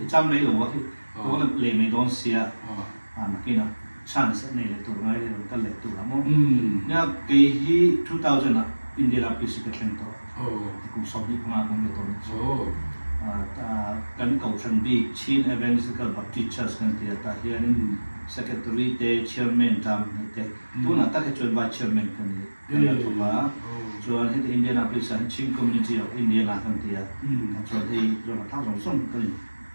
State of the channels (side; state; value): both; inverted; correlation -1.00